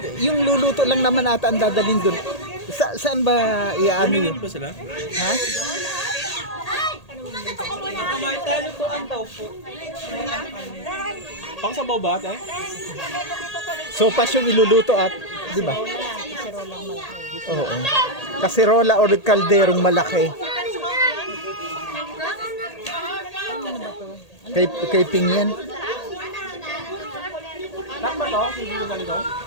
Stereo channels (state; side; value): late; right; 1.8 ms